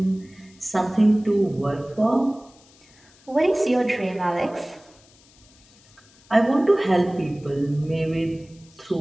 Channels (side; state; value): left; noise; hiss, 28 dB below the sound